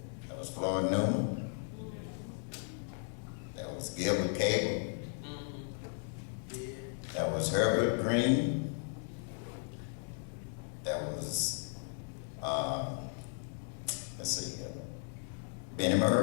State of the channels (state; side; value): silent; right; 54 dB below the other